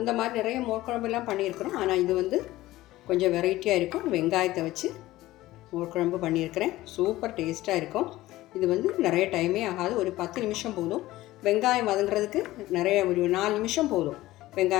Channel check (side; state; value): right; quieter; 16.8 dB